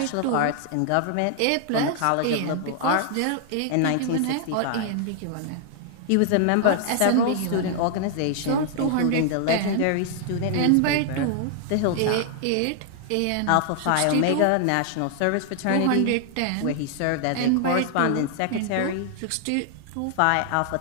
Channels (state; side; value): different; both; correlation 0.00